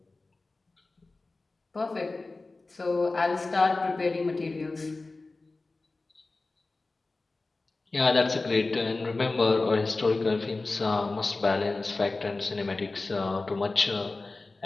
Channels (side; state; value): right; quieter; 3.4 dB